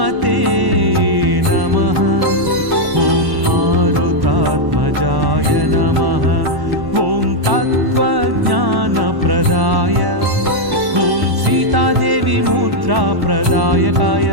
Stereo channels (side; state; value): left; late; 1.1 ms